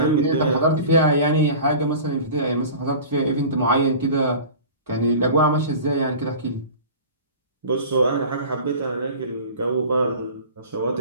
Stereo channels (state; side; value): inverted; both; correlation -0.39